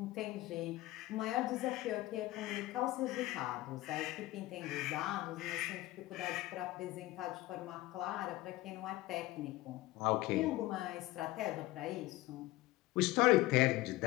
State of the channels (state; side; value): quieter; right; 18.0 dB